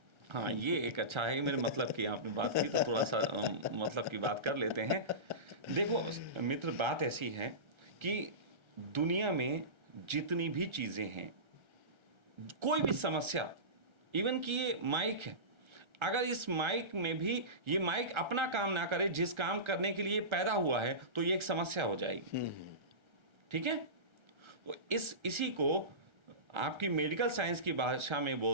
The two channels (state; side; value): late; left; 1.3 ms